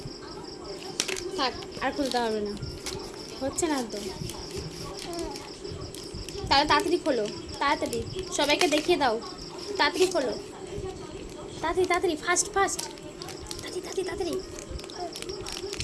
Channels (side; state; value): both; identical; correlation 1.00